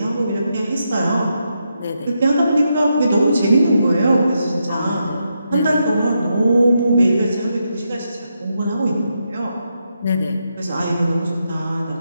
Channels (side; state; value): both; inverted; correlation -0.83